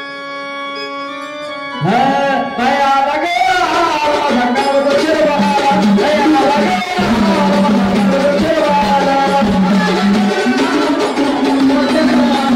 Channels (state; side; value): identical; both; correlation 1.00